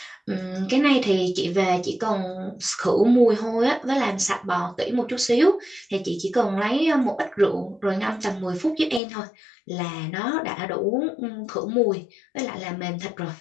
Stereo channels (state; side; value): drops out; right; at 9.0 s